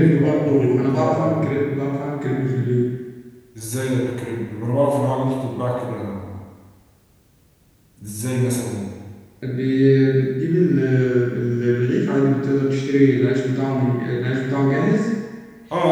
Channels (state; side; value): identical; both; correlation 1.00